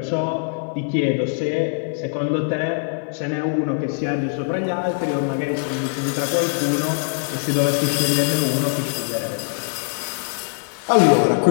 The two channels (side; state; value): right; silent; digital silence